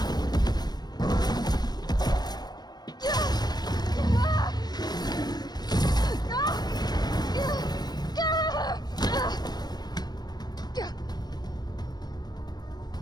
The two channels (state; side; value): late; right; 0.19 ms